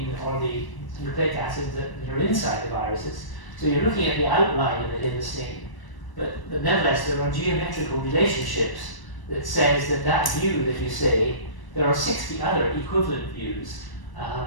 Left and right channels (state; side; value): late; right; 1.0 ms